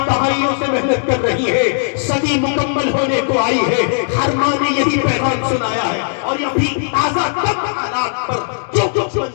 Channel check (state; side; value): silent; right; digital silence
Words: دہائیوں سے محنت کر رہی ہے، صدی مکمل ہونے کو آئی ہے، ہر ماں نے یہی پیغام سنایا ہے، اور یہ بھی تازہ تب حالات پر جو کچھ